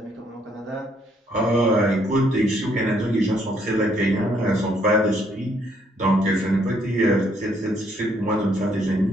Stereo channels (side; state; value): both; normal; correlation 0.69